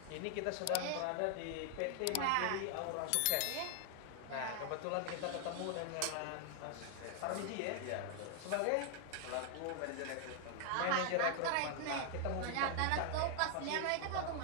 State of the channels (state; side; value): different; both; correlation 0.00